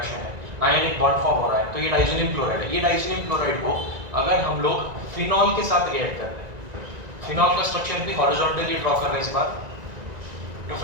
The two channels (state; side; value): late; left; 1.9 ms